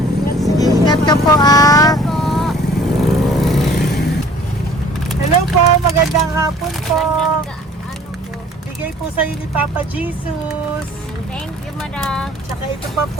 Sige, ingat ka po, ah. Hello po, magandang hapon po. Ano po? Bigay po sa'yo ni Papa Jesus. Thank you, madam. Tsaka ito pa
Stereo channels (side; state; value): both; normal; correlation 0.52